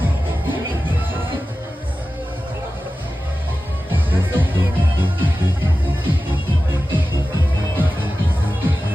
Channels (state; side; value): normal; both; correlation 0.94